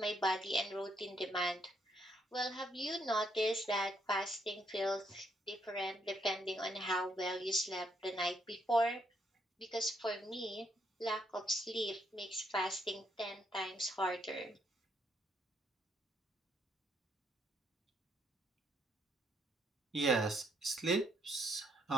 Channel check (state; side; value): normal; both; correlation 0.73